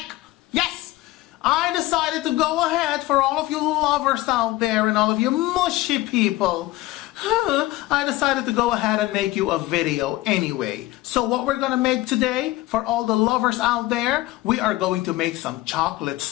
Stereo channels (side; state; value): right; quieter; 17.9 dB